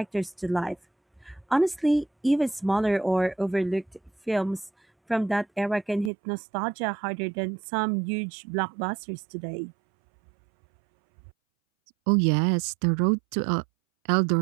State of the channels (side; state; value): left; drops out; at 6.1 s